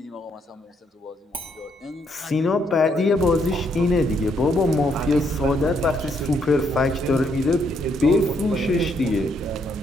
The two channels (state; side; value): normal; both; correlation 0.73